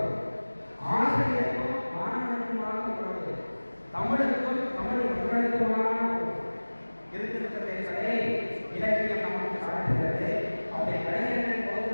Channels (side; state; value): both; inverted; correlation -1.00